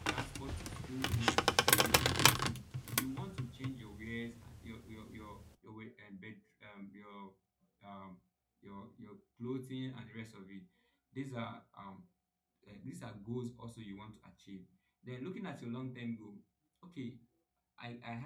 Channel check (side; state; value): both; identical; correlation 1.00